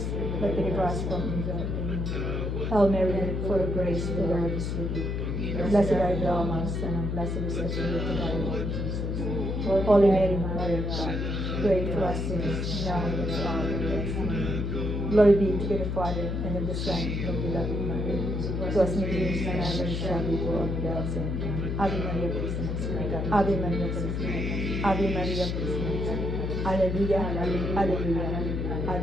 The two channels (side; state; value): left; noise; hum, 1 dB below the sound